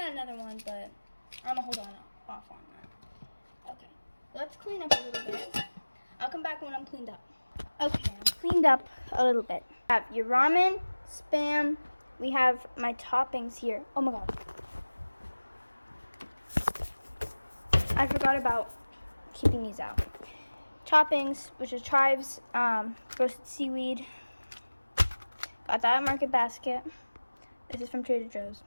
another one, but I'm gonna hold off on that. Okay, let's clean up a little bit. I'll come back when I'm cleaned up. Okay, I'm cleaned up a little bit. I have your ramen, Spam. We have my toppings here. Oh my god. I forgot about keeping these out. Toppings, which is chives, roasted seaweed. Got that at Market Basket. This is from Trader Joe's.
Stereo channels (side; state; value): both; inverted; correlation -1.00